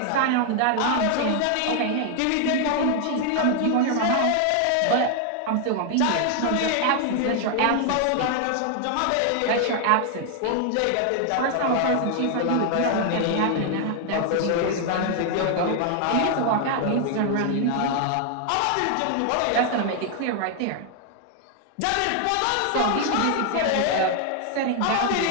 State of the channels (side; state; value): both; different; correlation 0.00